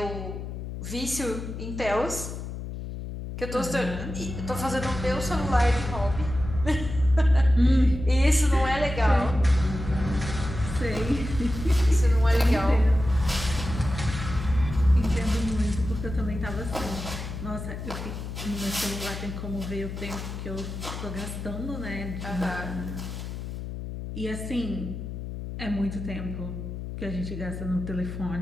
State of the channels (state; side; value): noise; left; hum, 7 dB below the sound